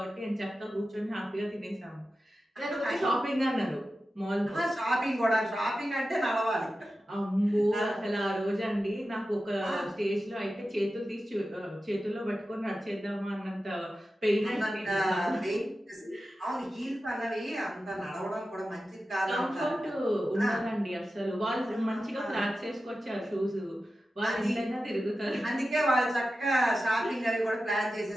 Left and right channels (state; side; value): normal; both; correlation 0.93